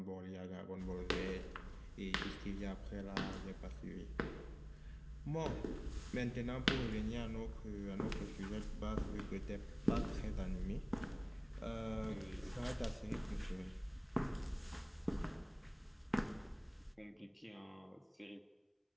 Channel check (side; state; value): both; identical; correlation 1.00